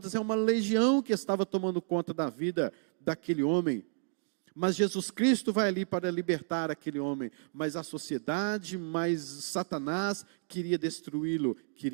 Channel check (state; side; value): silent; left; digital silence